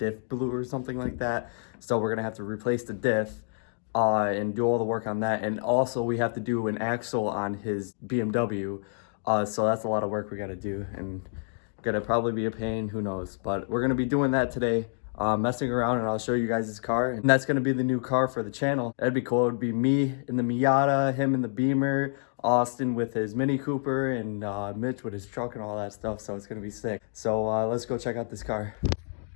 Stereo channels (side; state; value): right; silent; digital silence